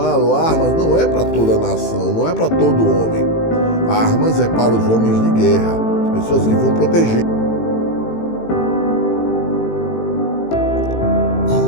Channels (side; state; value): right; late; 18 ms